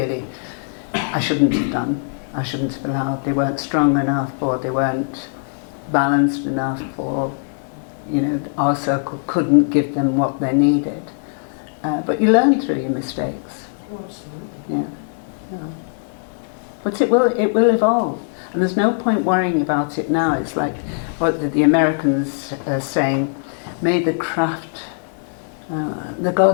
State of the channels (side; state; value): right; silent; digital silence